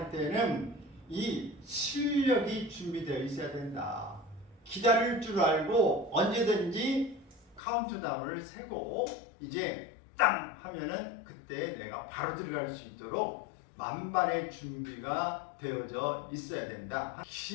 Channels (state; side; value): drops out; right; at 7.6 s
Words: 때는 이 실력이 준비되어 있어야 된다. 기다릴 줄 알고 언제든지 카운트다운을 세고 이제 땅 하면은 그때 내가 바로 들어갈 수 있도록 만반의 준비가 되어져 있어야 된다.